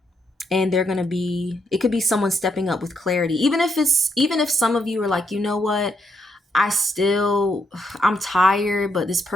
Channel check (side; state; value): both; normal; correlation 0.77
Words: And they're going to be, it could be someone stepping up with clarity. Even if some of you are like, you know what, I'm tired, but this